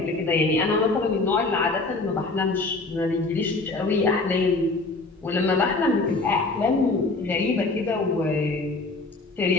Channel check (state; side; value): quieter; right; 3.4 dB